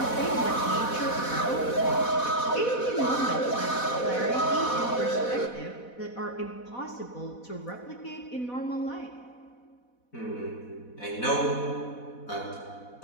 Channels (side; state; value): right; late; 4.1 ms